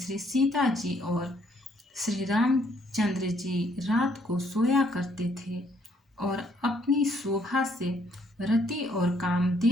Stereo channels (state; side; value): normal; both; correlation 0.68